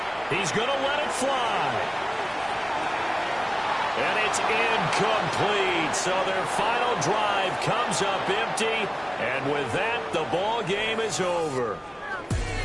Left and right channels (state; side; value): identical; both; correlation 1.00